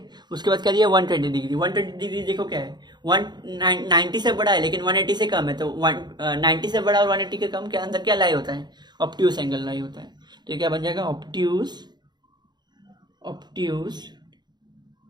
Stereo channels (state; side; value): late; left; 0.21 ms